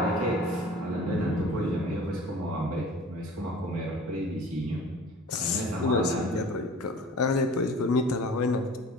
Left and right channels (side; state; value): both; normal; correlation 0.43